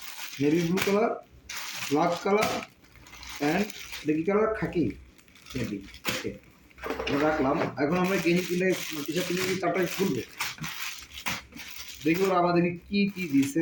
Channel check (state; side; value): identical; both; correlation 1.00